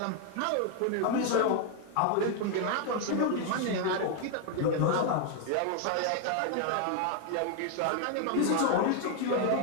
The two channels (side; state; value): both; different; correlation 0.00